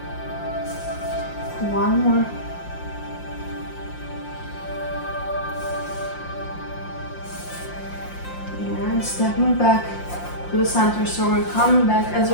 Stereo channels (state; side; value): late; right; 5.7 ms